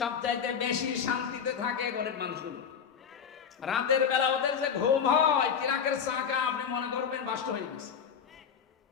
বেশি শান্তিতে থাকে গরিব মানুষগুলো। রাতের বেলা ওদের যে ঘুম হয়, চিরাকের চাকা আপনি মনে করবেন বাস্ত হয়ে গেছে।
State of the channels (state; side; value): quieter; right; 7.2 dB